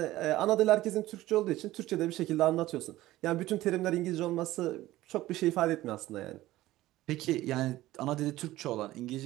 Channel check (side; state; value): left; quieter; 16.2 dB